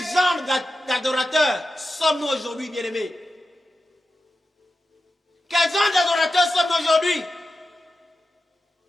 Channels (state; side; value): normal; both; correlation 0.92